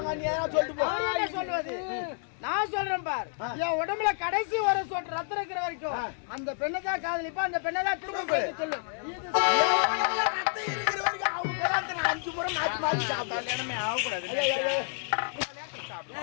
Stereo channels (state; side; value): silent; right; 58 dB below the other